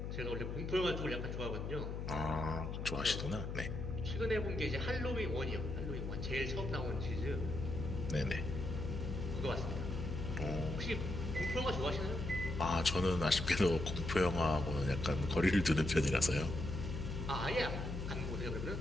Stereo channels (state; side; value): noise; left; hum, 4 dB below the sound